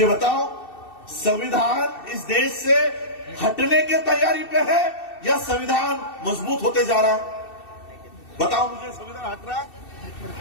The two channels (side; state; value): right; late; 2.7 ms